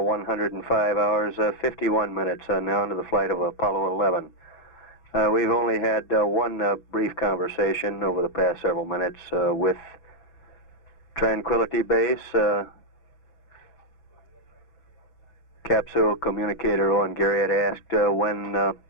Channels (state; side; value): late; right; 6.1 ms